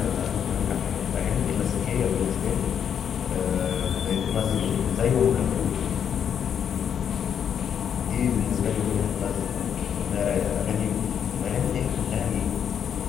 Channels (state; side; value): quieter; right; 8.3 dB